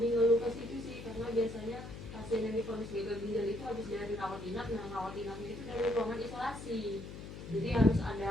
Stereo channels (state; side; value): noise; left; hum, 11 dB below the sound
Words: ngeluh ke situ sih, karena biasanya pasien yang divonis gagal ginjal itu habis dari rawat inap, nah rawat inapnya itu dari ruangan isolasi, jadi harus